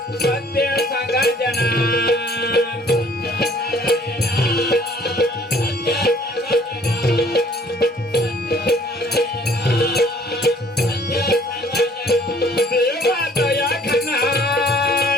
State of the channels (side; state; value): both; normal; correlation 0.57